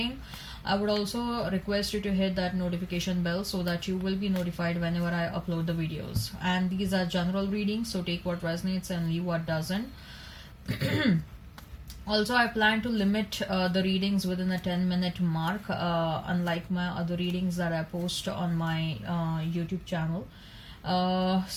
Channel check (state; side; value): identical; both; correlation 1.00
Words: I would also request you to hit that notification bell so that you will be notified whenever I upload the videos. And these are general readings, so take what resonates and leave what doesn't. Also, I plan to limit the readings within a 10-minute mark, unlike my other readings that I post on my YouTube channel.